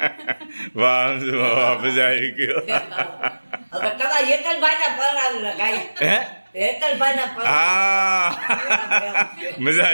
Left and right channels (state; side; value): inverted; both; correlation -1.00